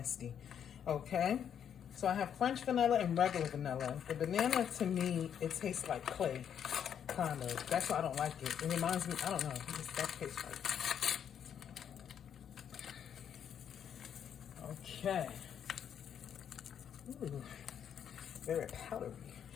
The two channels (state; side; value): quieter; right; 8.7 dB